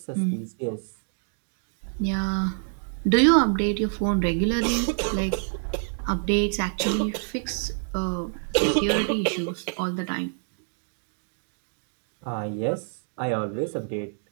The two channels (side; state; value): left; silent; digital silence